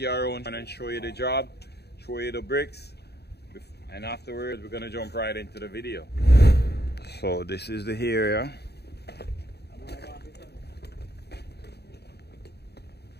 around and show you the job, show you the bricks, and afterwards we're gonna jump right into the video. So this is the area.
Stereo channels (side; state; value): right; late; 0.48 ms